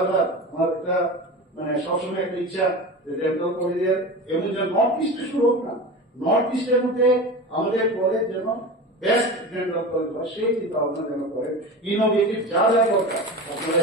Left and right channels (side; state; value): both; normal; correlation 0.29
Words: আমার একটা সবসময় একটা ইচ্ছা যে ডেন্টাল কলেজের এমন যে নর্থ ইস্টে শুরু হোক না, নর্থ ইস্টের মধ্যে আমাদের কলেজ যেন বেস্ট ডেন্টাল কলেজ হয় সেই চিন্তা ভাবনা যেন করে ইনোভেটিভ যা যা দরকার